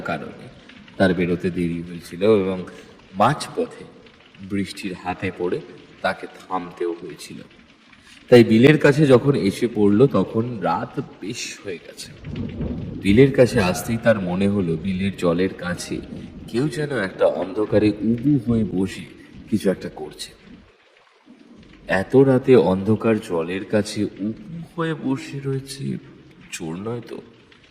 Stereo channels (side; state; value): both; identical; correlation 1.00